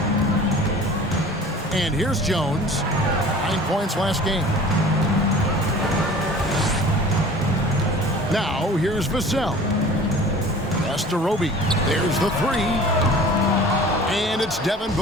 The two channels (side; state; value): both; normal; correlation 0.44